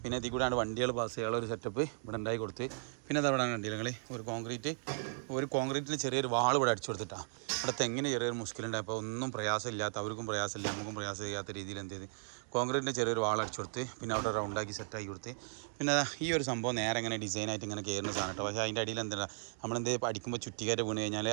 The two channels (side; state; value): left; silent; digital silence